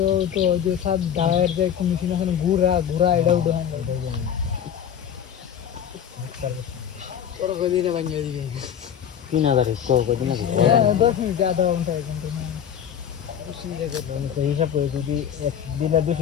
তো যে সব ডায়ার যে কমিশন আছে ঘুরা এটা উঠে হয় ওর গদিনে ভাঙিয়ে দিবে 3000 স্কোর করে দিনা 10 মিনিট আধা ঘন্টা এক ঘন্টা না হিসাব করে যদি একদিনে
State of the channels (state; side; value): quieter; right; 8.9 dB